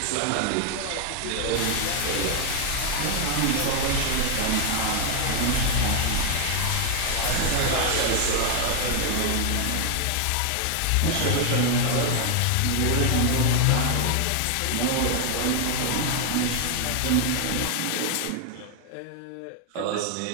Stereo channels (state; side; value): different; both; correlation 0.00